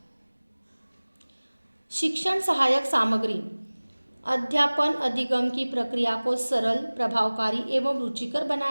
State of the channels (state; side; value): inverted; both; correlation -1.00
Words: शिक्षण सहायक सामग्री। अध्यापन अधिगम की प्रक्रिया को सरल, प्रभावकारी एवं रुचिकर